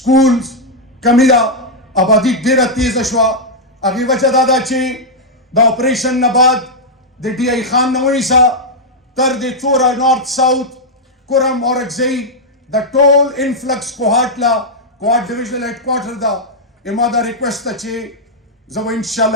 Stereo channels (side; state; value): both; normal; correlation -0.04